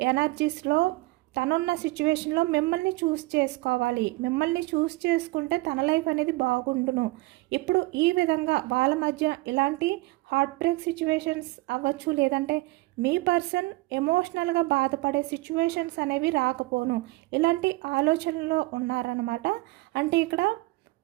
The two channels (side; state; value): left; quieter; 21.9 dB